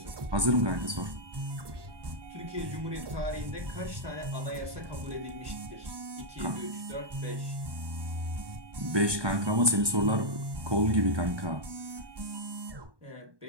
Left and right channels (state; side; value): late; left; 1.2 ms